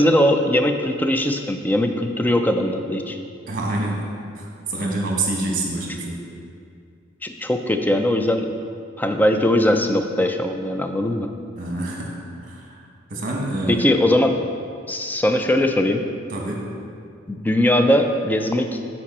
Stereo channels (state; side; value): normal; both; correlation 0.72